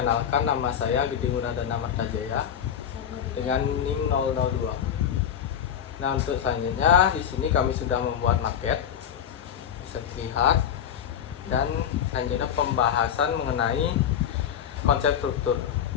nama saya Gede Muradana Martajaya dengan NIM 002. Nah, untuk selanjutnya di sini kami sudah membuat maket, bisa dilihat, dan selanjutnya pembahasan mengenai konsep struktur.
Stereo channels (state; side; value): quieter; right; 8.9 dB